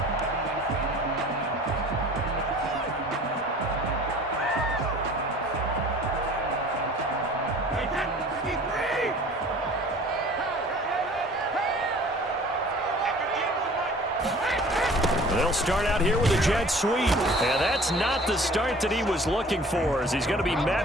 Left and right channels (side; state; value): both; normal; correlation 0.47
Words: They'll start out here with a jet sweep. And that's not the start that he was looking for, as he's going to be